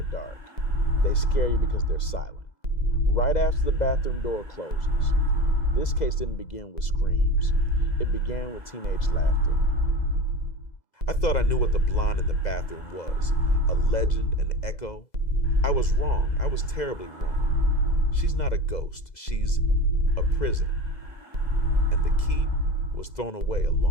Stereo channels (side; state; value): right; late; 2.0 ms